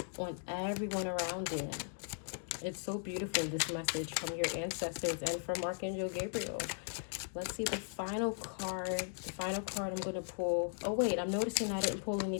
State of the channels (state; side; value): silent; right; digital silence